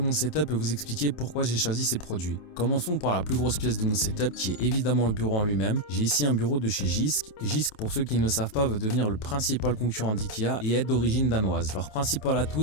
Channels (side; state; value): right; late; 27 ms